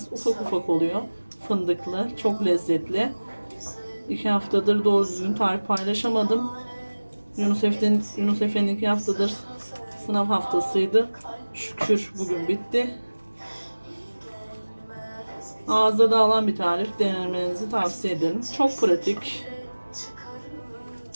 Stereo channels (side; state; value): both; inverted; correlation -1.00